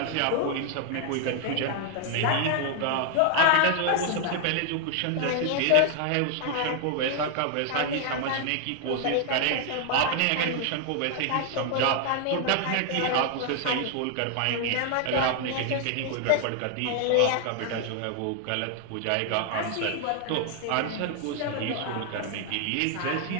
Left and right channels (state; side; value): different; both; correlation 0.00